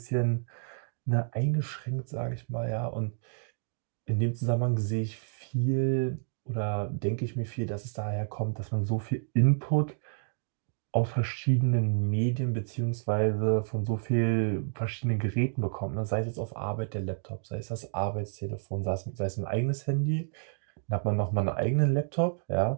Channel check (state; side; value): silent; left; digital silence